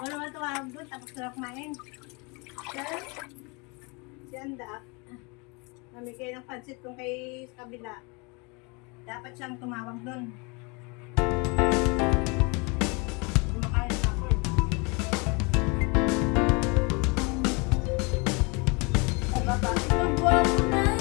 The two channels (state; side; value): quieter; right; 29.8 dB